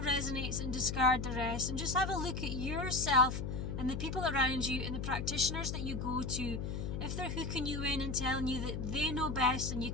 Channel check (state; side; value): noise; left; hum, 3 dB below the sound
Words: resonates and discard the rest, and just have a look at yourself and the people around you and the practitioners that you go to. If they're hooking you in and telling you that they know best and you